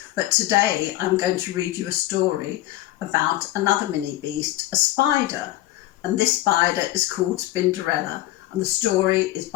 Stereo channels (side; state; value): right; quieter; 15.9 dB